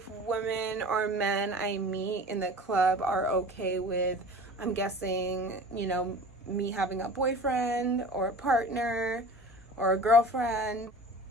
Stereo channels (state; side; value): normal; both; correlation 0.39